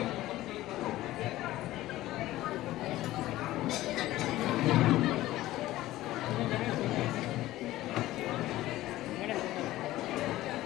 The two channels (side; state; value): right; quieter; 16.0 dB